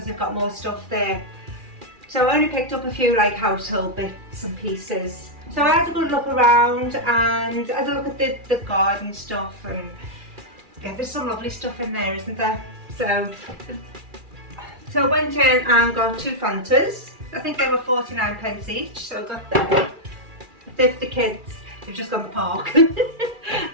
they've got more stuff there. So I only picked up a few like household bits and pieces. So I had a good look around and I had a look at the garden stuff, and yeah, there's some lovely stuff in there, isn't there? So I went in and got 2 Fantas. I think they were 49p each, so I got them. The kids, they've just gone to the park.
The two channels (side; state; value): left; late; 2.4 ms